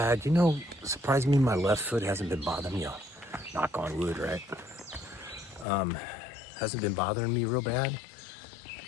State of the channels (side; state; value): right; drops out; at 5.7 s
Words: You know, surprised me my left foot hasn't been bothering me. Knock on wood, right? Hasn't been bothering me real bad.